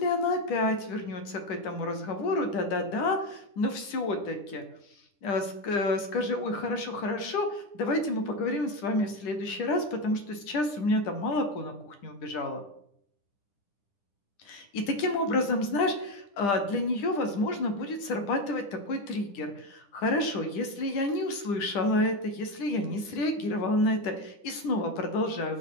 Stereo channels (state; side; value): late; right; 10 ms